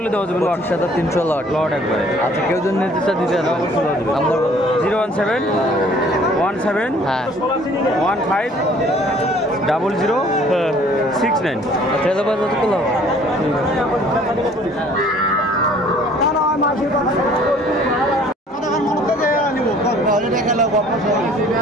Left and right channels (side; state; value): both; normal; correlation 0.55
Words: হলে দেওয়া যাবে। লট 300 লট। লট একবারে। আচ্ছা, কেউ যদি নির্দিষ্ট দিতে নাম্বার বলো। 017 17 হ্যাঁ, 15 00 69। ট্রেলার বাস কত করলো?